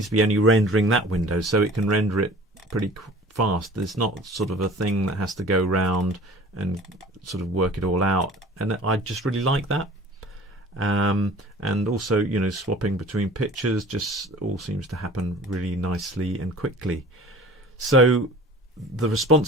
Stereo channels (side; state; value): both; normal; correlation 0.45